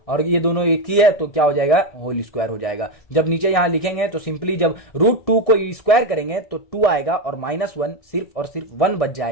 और ये दोनों एक ही है तो क्या हो जाएगा, होल स्क्वायर हो जाएगा। जब नीचे यहां लिखेंगे तो सिंपली जब √2 को स्क्वायर करेंगे तो 2 आएगा और माइनस 1 सिर्फ और सिर्फ 1 बच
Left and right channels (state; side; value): late; right; 1.6 ms